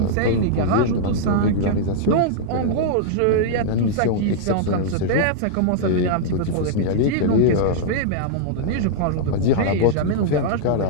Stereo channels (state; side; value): different; both; correlation -0.02